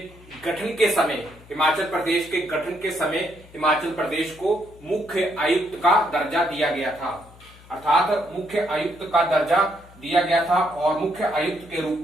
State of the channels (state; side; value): noise; left; hum, 23 dB below the sound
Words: गठन के समय हिमाचल प्रदेश को मुख्य आयुक्त का दर्जा दिया गया था, अर्थात मुख्य आयुक्त का दर्जा दिया गया था। और मुख्य आयुक्त के रूप